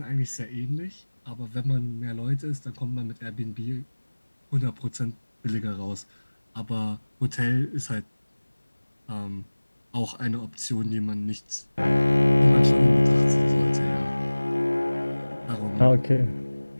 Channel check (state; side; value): inverted; both; correlation -1.00